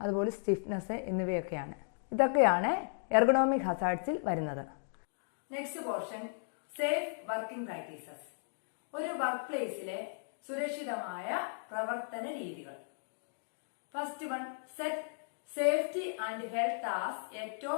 അതുപോലെ സ്റ്റിഫ്നെസ് എന്നിവയൊക്കെയാണ്. ഇതൊക്കെയാണ് എർഗണോമിക് ഹസാർഡ്സിൽ വരുന്നത്. Next portion, safe working practices. ഒരു വർക്ക് പ്ലേസിലെ സുരക്ഷിതമായ പ്രവർത്തന രീതികൾ. First one, set safety and health as a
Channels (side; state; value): right; silent; digital silence